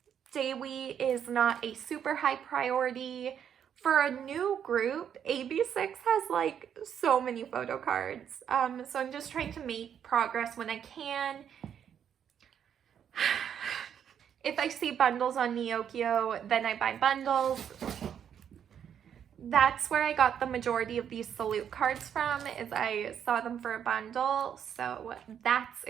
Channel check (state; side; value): quieter; left; 8.7 dB